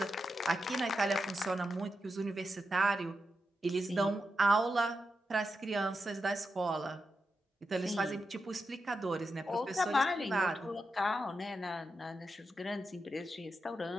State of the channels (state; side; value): normal; both; correlation 0.87